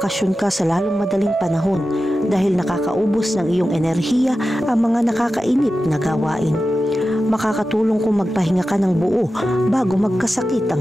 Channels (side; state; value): both; normal; correlation 0.93